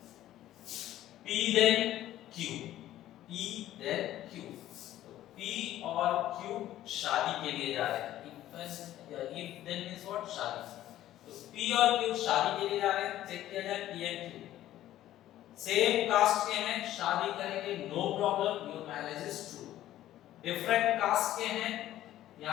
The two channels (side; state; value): right; quieter; 13.4 dB